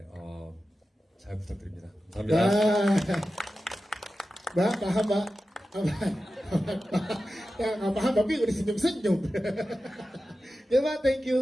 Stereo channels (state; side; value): normal; both; correlation 0.93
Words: 잘 부탁드립니다. 감사합니다. Mbak, paham Mbak? Ya nggak paham tapi udah senyum-senyum. Ya Mbak, thank